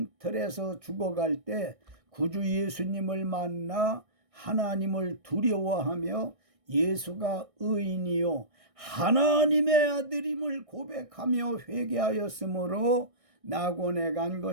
죽어갈 때 구주 예수님을 만나 하나님을 두려워하며 예수가 의인이요 하나님의 아들임을 고백하며 회개하였으므로 낙원에 간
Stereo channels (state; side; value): late; left; 1.6 ms